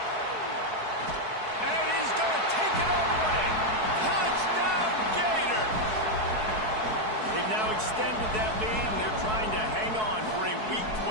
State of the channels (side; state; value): left; late; 4.6 ms